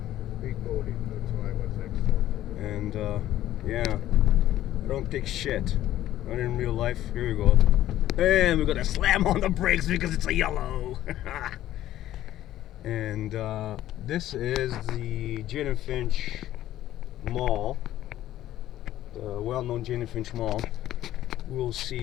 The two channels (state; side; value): quieter; right; 13.4 dB